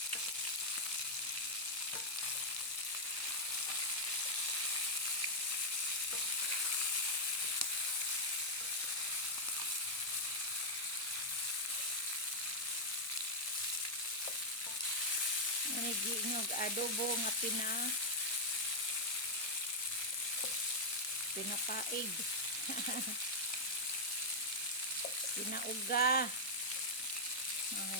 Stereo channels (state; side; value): late; right; 1.5 ms